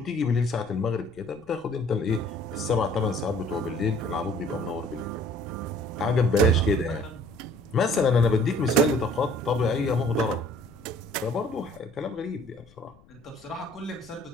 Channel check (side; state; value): left; noise; rumble, 26 dB below the sound